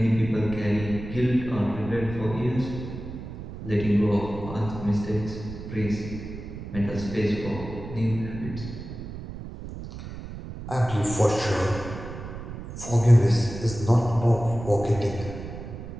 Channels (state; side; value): noise; right; rumble, 10 dB below the sound